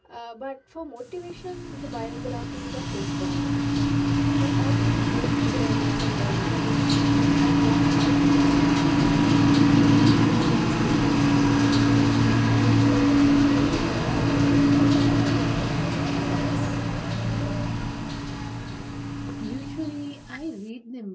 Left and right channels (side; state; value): both; identical; correlation 1.00